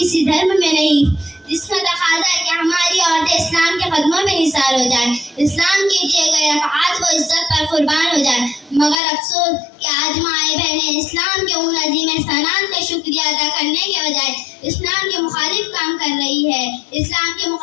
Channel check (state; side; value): drops out; right; at 9.0 s